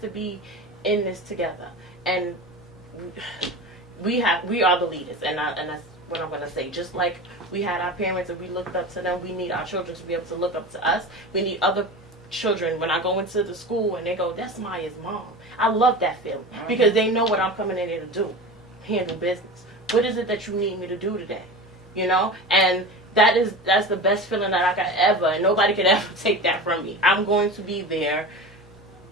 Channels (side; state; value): left; noise; hum, 25 dB below the sound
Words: be in this together. And we are the leaders. And that's what I'm gonna say. Just like we had our parents and we looked up to them, we need our children to be able to look up to us. We need other children. When I go into the school and they go, "That's Maya's mom," I love that feeling, because they know what I'm coming in here to do, handle business. What is it that you need me to do today? You know, and that's the best feeling that I could ever, and nobody could ever take that from me. I'm going to be there